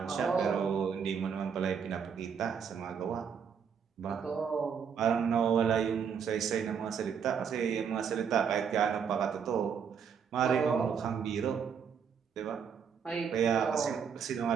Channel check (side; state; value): left; quieter; 7.0 dB